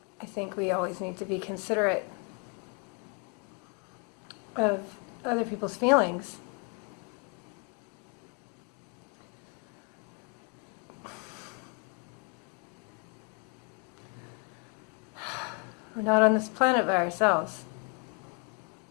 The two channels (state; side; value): quieter; right; 32.9 dB